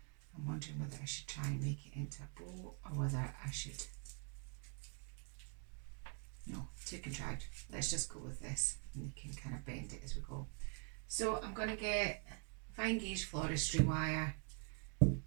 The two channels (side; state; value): left; quieter; 38.0 dB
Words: I'm wondering whether I should try and make it into a bow or whether I should. No, too contrived. Let's just go with this and we can kind of bend it as we go. So I'm going to get fine gauge floristry wire